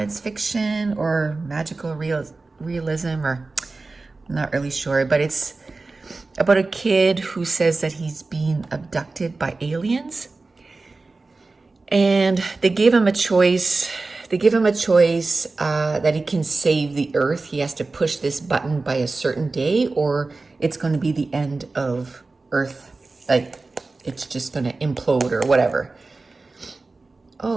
fiction or magical realism, or I'm not really sure, but it's about a kid who says that he's being abducted by aliens, and they gave him a choice. That he can save the Earth. He has to push this button by a certain day, or it's going to be the end of Earth. Like, it's just going to implode or whatever.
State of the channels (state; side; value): quieter; left; 3.6 dB